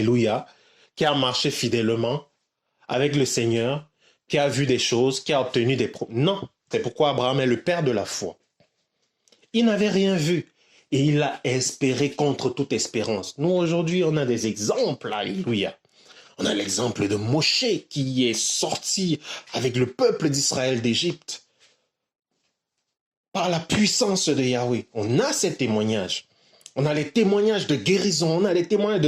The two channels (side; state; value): both; identical; correlation 1.00